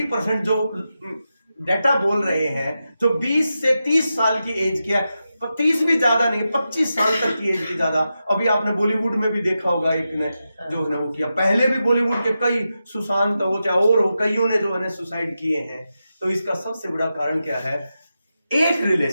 जो डाटा बोल रहे हैं, जो 20 से 30 साल की एज की है, 30 भी ज्यादा नहीं, 25 साल तक की एज की ज्यादा। अभी आपने बॉलीवुड में भी देखा होगा, एक ने जो है वो किया, पहले भी बॉलीवुड के कई सुशांत हो चाहे और हो, कईयों ने जो है सुसाइड किए हैं। तो इसका सबसे बड़ा कारण क्या है? एक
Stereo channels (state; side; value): inverted; both; correlation -0.90